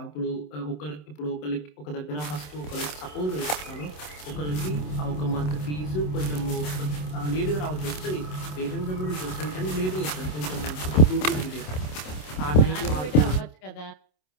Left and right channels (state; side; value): late; right; 27 ms